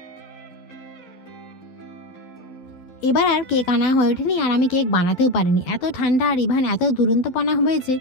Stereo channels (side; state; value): right; late; 12 ms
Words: এবার আর কেক আনা হয়ে ওঠেনি, আর আমি কেক বানাতেও পারিনি, এত ঠান্ডা আর ইভান এত দুরন্তপনা হয়েছে